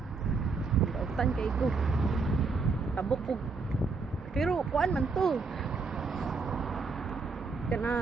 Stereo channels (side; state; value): left; quieter; 4.4 dB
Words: Dautan kay ko. Tabok ko. Pero kuan man to.